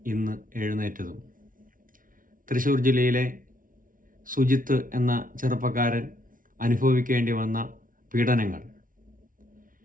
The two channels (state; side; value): late; left; 0.39 ms